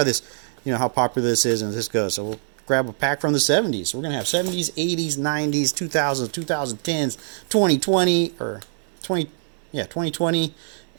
this, how popular this is and this goes. So we'll grab a pack from the 70s. So we're going to have 70s, 80s, 90s, 2000s, 2010s, 2020, or 2020,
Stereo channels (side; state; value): left; silent; digital silence